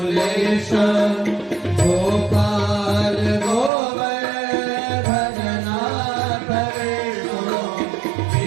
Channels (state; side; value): drops out; left; at 3.7 s